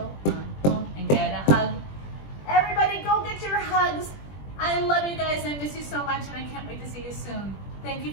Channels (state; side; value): late; right; 20 ms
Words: on. Thank you